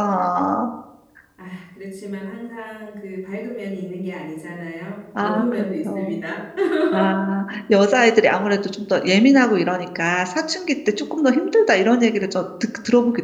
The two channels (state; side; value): identical; both; correlation 1.00